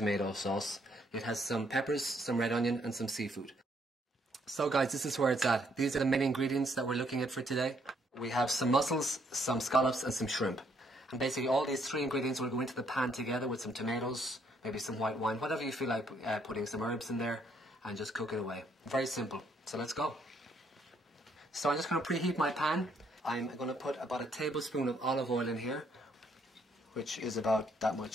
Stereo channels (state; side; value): normal; both; correlation 0.70